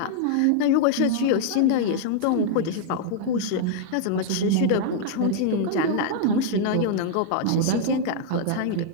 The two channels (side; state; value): both; different; correlation -0.01